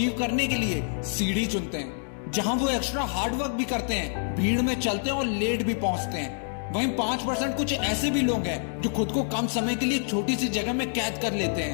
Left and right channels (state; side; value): silent; right; 60 dB below the other